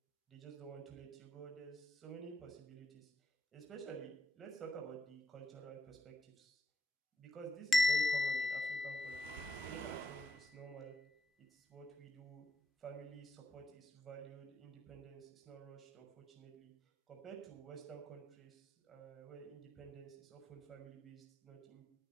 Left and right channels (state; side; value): normal; both; correlation 0.82